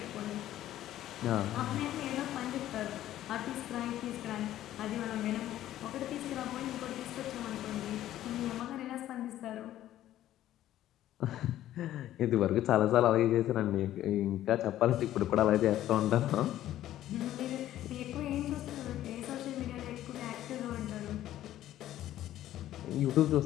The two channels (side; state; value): right; quieter; 13.1 dB